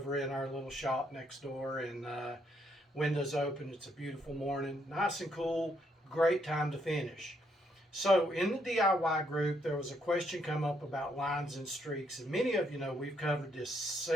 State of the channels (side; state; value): both; normal; correlation 0.74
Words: in our little shop next door, and windows open. It's a beautiful morning, nice and cool. Great time to finish. So in the DIY group, there was a question come up about lines and streaks, and many of you know we've covered this